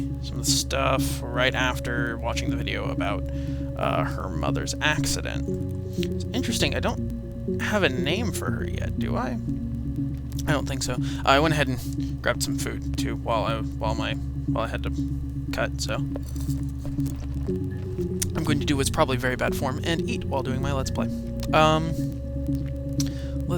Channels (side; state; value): both; identical; correlation 1.00